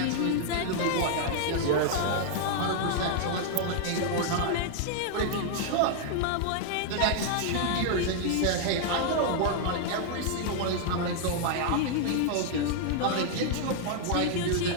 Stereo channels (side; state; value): both; different; correlation -0.01